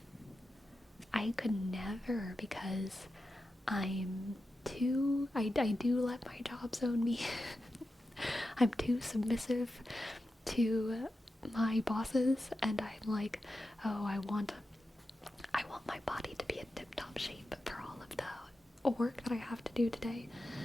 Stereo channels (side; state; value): both; normal; correlation 0.91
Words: because I do let my jobs own me. I'm too submissive to my bosses, and I'm like, oh, I want my body to be in tip-top shape for all of the work that I have to do today.